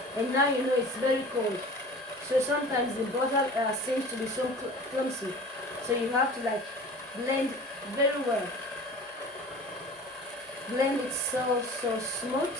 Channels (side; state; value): both; normal; correlation 0.41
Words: And now you know it's very cold. So sometimes the butter seems to be so clumsy. So you have to like blend very well. Blend it so smooth.